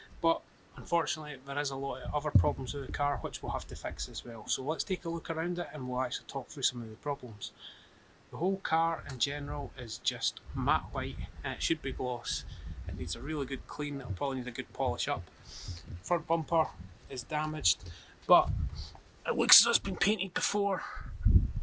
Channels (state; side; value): identical; both; correlation 1.00